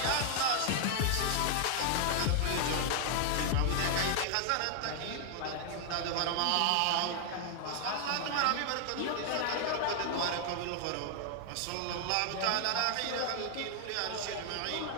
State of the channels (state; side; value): different; both; correlation 0.00